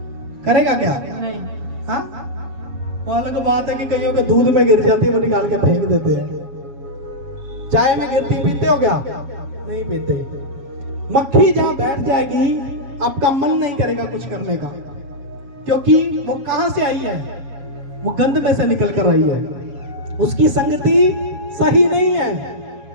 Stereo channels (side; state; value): left; late; 7.3 ms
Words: करेगा क्या? नहीं। हाँ वो अलग बात है कि कईयों के दूध में गिर जाती है, वो निकाल के फेंक देते हैं। चाय में गिरती पीते हो क्या? नहीं पीते। मक्खी जहां बैठ जाएगी आपका मन नहीं करेगा कुछ करने का, क्योंकि वो कहां से आई है? वो गंद में से निकल कर आई है। उसकी संगति सही नहीं